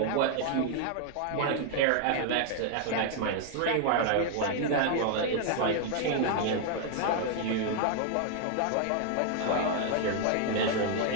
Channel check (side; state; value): both; different; correlation 0.00